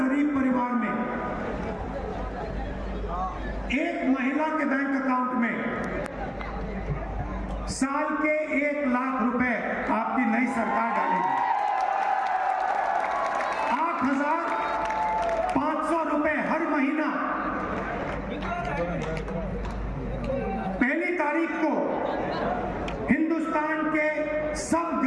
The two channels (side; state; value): both; identical; correlation 1.00